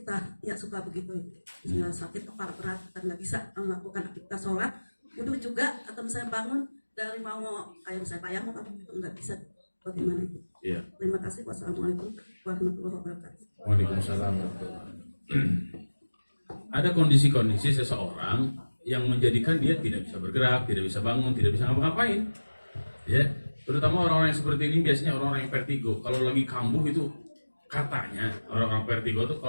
kita ya suka begitu, misalnya sakit kepala berat kita nggak bisa melakukan aktivitas sholat, wudhu juga, atau misalnya bangun dari mau kayak misalnya tayamum itu nggak bisa, bagaimana itu? Iya. Terima kasih. Wassalamualaikum warahmatullahi wabarakatuh. Waalaikumsalam warahmatullahi wabarakatuh. Ada kondisi-kondisi seseorang yang menjadikan dia tidak bisa bergerak, tidak bisa bangun, tidak bisa ngapa-ngapain. Ya, terutama orang-orang yang seperti ini biasanya orang-orang yang vertigo. Kalau lagi kambuh itu katanya orang-orang vertigo itu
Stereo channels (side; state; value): both; inverted; correlation -1.00